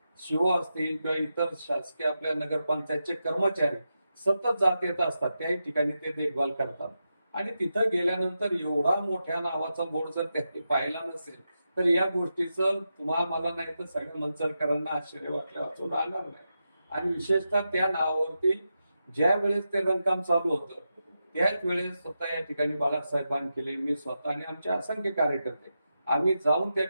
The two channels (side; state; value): both; inverted; correlation -0.88